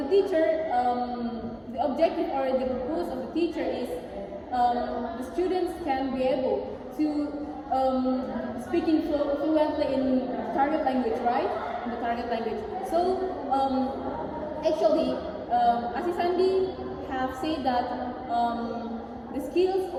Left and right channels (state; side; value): identical; both; correlation 1.00